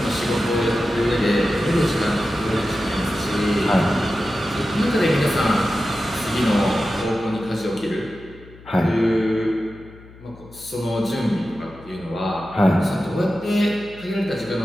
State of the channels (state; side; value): noise; left; hum, 21 dB below the sound